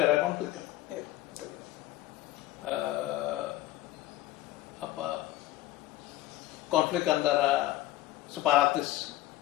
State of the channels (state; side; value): quieter; right; 15.3 dB